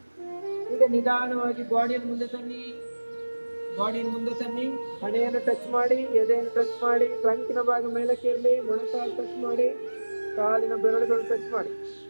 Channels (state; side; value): inverted; both; correlation -1.00